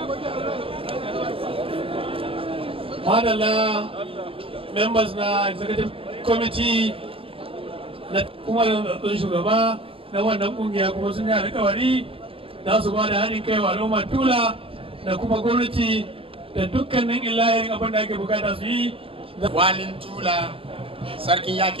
Madalla members na executive committee na kuma zaɓen shugaba na wannan kungiya kuma sun yi alƙawari za su ba da haɗin kai wa al'ummar Tula da kuma gwamnati da dukkanin illahirin abin da ake bukata su yi. Walin Tula, Sarkin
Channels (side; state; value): left; late; 0.27 ms